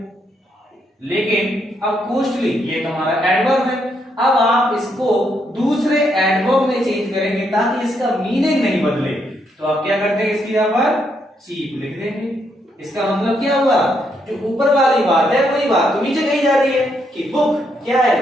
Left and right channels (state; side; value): normal; both; correlation 0.76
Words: लेकिन अब कॉस्टली ये हमारा एडवर्ब है, अब आप इसको दूसरे एडवर्ब में चेंज करेंगे ताकि इसका मीनिंग नहीं बदले। तो आप क्या करते हैं, इसकी यहाँ पर चीप लिख देंगे। इसका मतलब क्या हुआ, जो ऊपर वाली बात है वही बात तो नीचे कही जा रही है कि बुक क्या